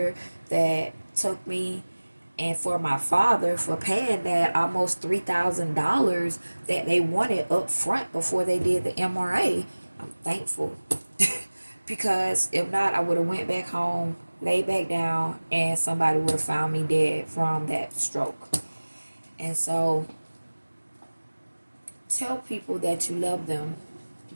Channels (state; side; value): inverted; both; correlation -1.00